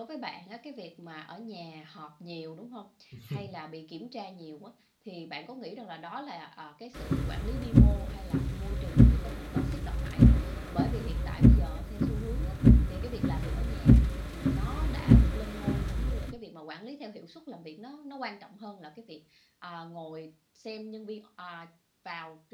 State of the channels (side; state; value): both; identical; correlation 1.00